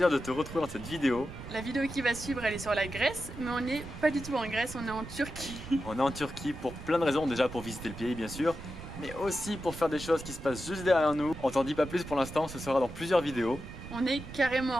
de te retrouver dans cette vidéo. La vidéo qui va suivre, elle est sur la Grèce, mais on n'est pas du tout en Grèce, on est en Turquie. On est en Turquie pour plein de raisons, déjà pour visiter le pays bien sûr, mais aussi pour faire des choses qui se passent juste derrière nous. On t'en dit pas plus pour l'instant, ce sera dans plusieurs vidéos. On est carrément en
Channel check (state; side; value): noise; right; rumble, 12 dB below the sound